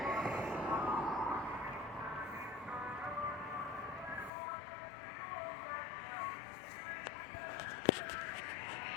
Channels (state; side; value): drops out; right; at 4.3 s